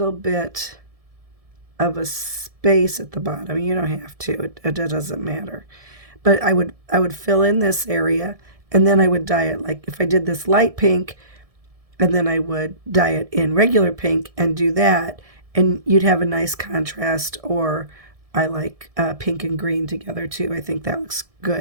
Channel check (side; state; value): left; late; 1.7 ms